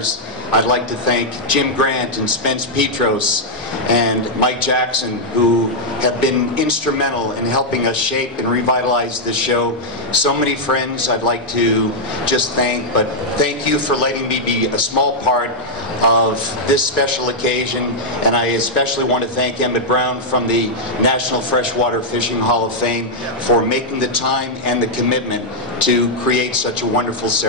I'd like to thank Jim Grant and Spence Petros and Mike Jackson, who have been instrumental in helping us shape and revitalize this show. So many friends I'd like to just thank, but thank you for letting me be a small part of this special occasion. And I especially want to thank Emmett Brown from the National Freshwater Fishing Hall of Fame for making the time and the commitment to create such a wonderful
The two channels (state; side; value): normal; both; correlation -0.05